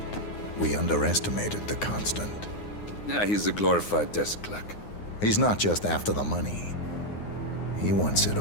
We underestimated the Constant. Yeah, he's a glorified desk clerk. He's not just after the money. He wants it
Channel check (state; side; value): late; right; 9.7 ms